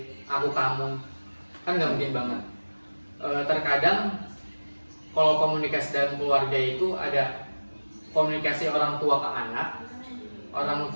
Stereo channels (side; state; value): both; inverted; correlation -1.00